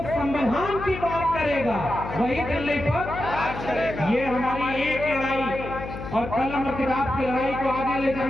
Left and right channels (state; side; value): noise; left; hum, 9 dB below the sound